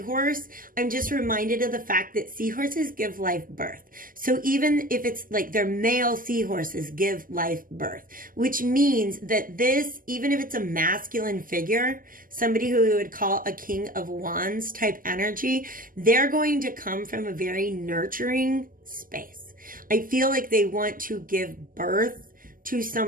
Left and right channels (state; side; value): late; left; 0.41 ms